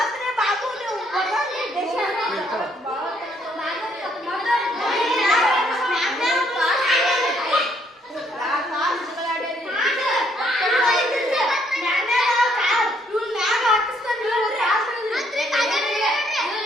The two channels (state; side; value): normal; both; correlation 0.69